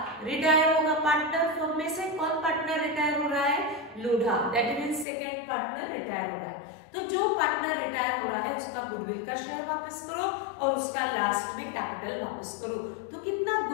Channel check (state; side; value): drops out; right; at 5.1 s